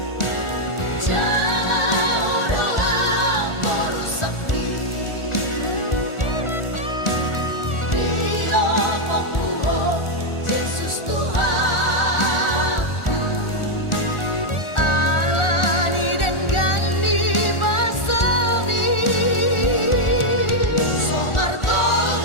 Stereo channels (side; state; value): right; late; 1.4 ms